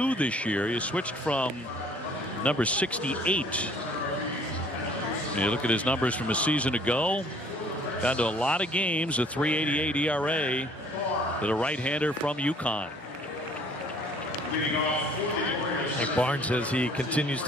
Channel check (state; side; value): normal; both; correlation 0.56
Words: this year. He switched from number 68. You look at his numbers from a season ago. Down to a lot of games, a 3.88 ERA for the right-hander from UConn. Like Barnes, as he continues